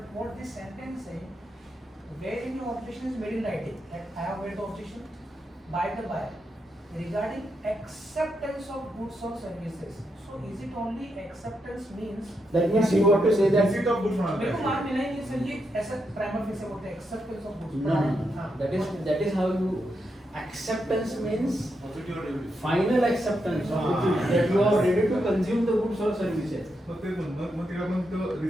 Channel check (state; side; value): normal; both; correlation 0.83